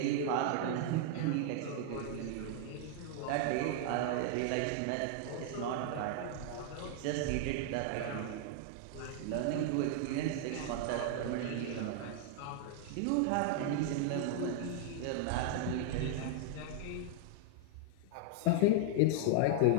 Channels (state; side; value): different; both; correlation -0.01